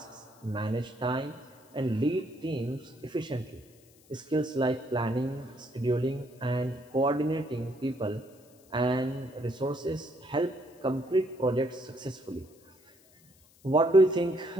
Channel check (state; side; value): noise; left; hiss, 29 dB below the sound